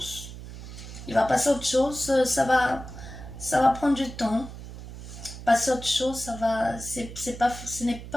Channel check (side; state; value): right; noise; hum, 12 dB below the sound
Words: Il va passer à autre chose, ça va prendre du temps. Passer à autre chose, ce n'est